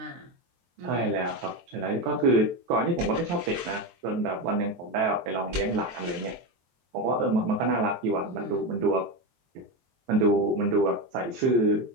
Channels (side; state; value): left; late; 23 ms